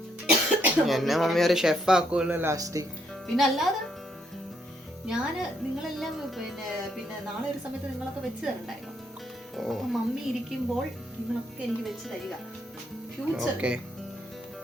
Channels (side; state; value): both; normal; correlation 0.73